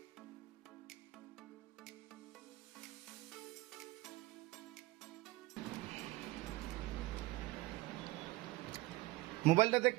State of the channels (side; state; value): left; quieter; 19.6 dB